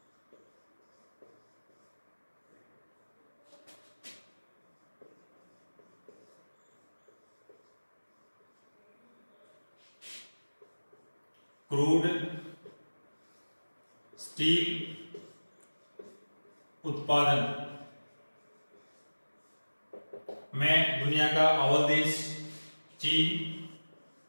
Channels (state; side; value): inverted; both; correlation -1.00